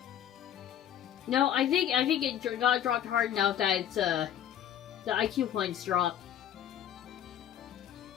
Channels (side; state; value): right; quieter; 10.3 dB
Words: No, I think it got dropped hard enough that it's, the IQ points dropped.